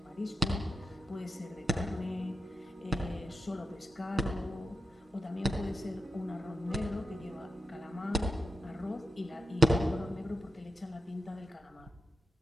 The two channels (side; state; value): both; normal; correlation 0.88